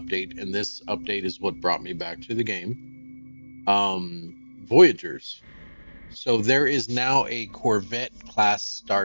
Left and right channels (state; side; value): inverted; both; correlation -1.00